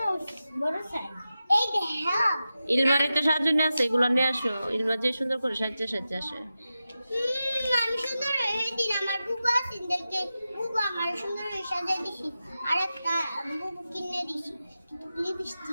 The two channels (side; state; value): both; inverted; correlation -0.92